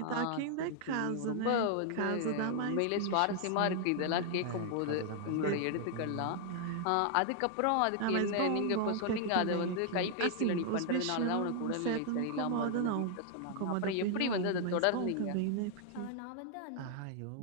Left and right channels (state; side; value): different; both; correlation 0.00